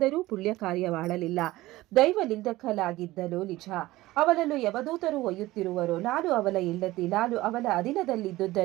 ಪುಣ್ಯ ಕಾರ್ಯ ಮಾಡಲಿಲ್ಲ. ದೈವ ನಿಂದಕಲಾಗಿದ್ದನು ನಿಜ. ಅವನನ್ನು ಯಮದೂತರು ಒಯ್ಯುತ್ತಿರುವರು. ನಾನು ಅವನ ಹೆಂಡತಿ. ನಾನು ಅವನ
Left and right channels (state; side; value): quieter; left; 17.8 dB